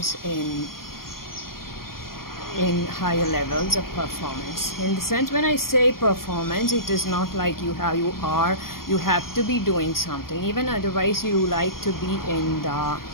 in higher levels of performance. In the sense, when I say performance, it is not like you have to be doing something. Even otherwise, you like to be in the,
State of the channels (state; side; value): late; right; 0.92 ms